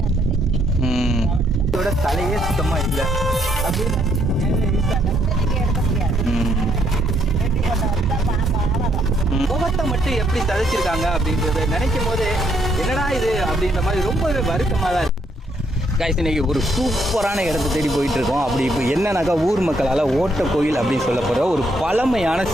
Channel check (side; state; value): both; normal; correlation 0.72